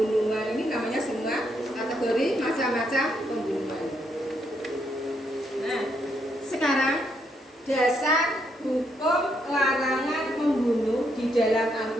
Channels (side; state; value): both; normal; correlation 0.76